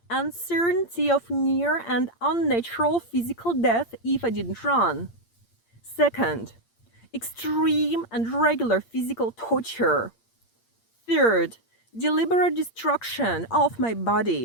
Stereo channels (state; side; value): late; right; 8.7 ms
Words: uncertainty of near and unnatural physical death if I didn't run. Second, extreme and regular physical torture. Third, deliberate destruction of my